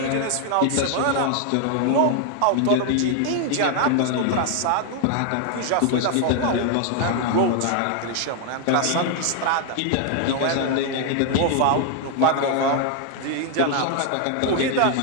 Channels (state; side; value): different; both; correlation 0.00